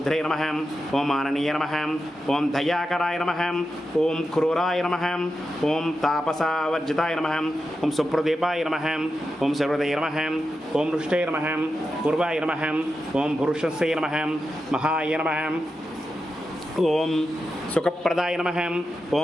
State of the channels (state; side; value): normal; both; correlation 0.89